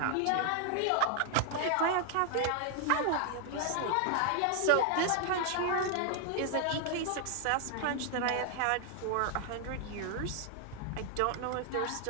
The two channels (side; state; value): both; different; correlation 0.00